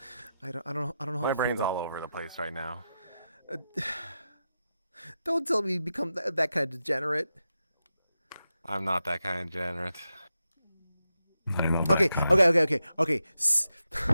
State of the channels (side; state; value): both; inverted; correlation -0.89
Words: don't know. I don't know how My to brain's feel all over the place right now. Don't tell me you become that kind of degenerate. I'm not that kind of degenerate. Okay.